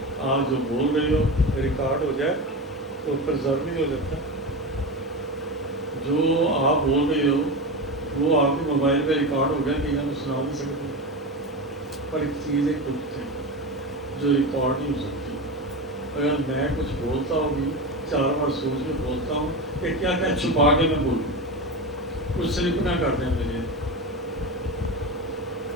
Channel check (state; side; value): normal; both; correlation 0.22